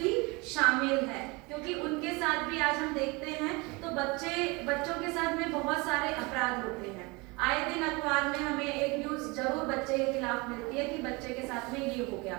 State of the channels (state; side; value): quieter; left; 26.2 dB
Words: शामिल हैं, क्योंकि उनके साथ भी आज हम देखते हैं तो बच्चों के साथ में बहुत सारे अपराध होते हैं। आए दिन अखबार में हमें एक न्यूज जरूर बच्चे के खिलाफ मिलती है कि बच्चे के साथ में ये हो गया,